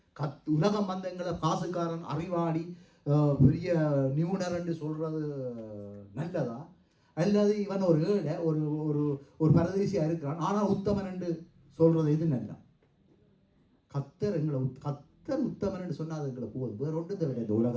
உலகம் வந்த எங்களை காசுக்காரன், அறிவாளி, பெரிய நிபுணர் என்று சொல்றது நல்லதா, அல்லது இவன் ஒரு ஏழை, ஒரு பரதேசியா இருக்கிறான் ஆனால் உத்தமன் என்று சொல்றது எது நல்லா? கத்தர் உத்தமன் என்று சொன்னால் அது எங்களை போதும். வேற ஒன்று விட இந்த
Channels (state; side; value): identical; both; correlation 1.00